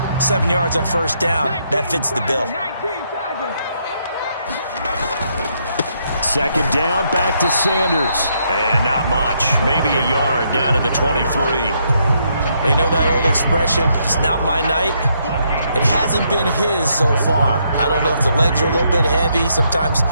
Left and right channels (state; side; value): inverted; both; correlation -0.75